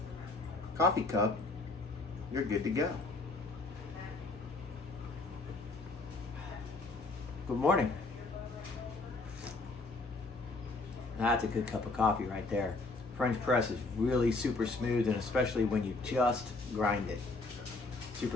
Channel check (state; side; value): quieter; right; 3.4 dB